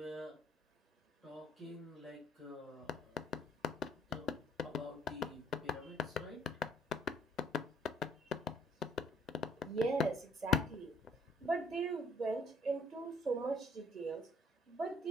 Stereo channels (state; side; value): normal; both; correlation 0.63